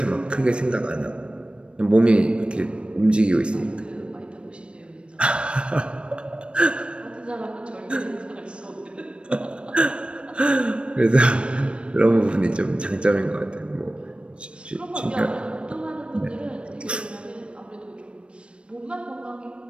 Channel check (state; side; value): late; left; 0.058 ms